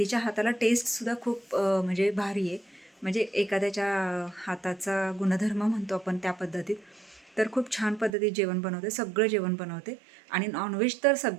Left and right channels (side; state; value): left; drops out; at 8.1 s